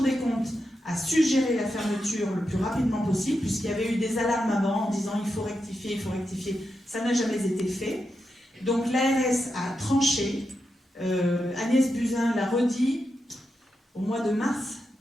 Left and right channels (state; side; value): normal; both; correlation 0.87